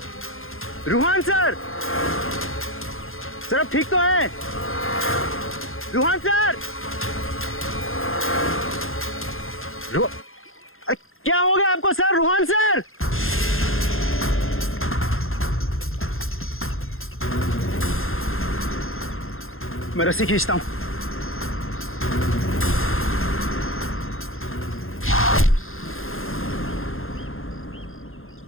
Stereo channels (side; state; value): right; late; 0.60 ms